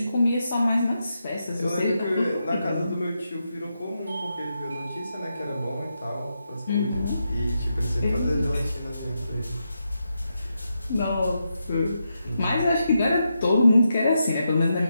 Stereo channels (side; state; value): both; inverted; correlation -0.85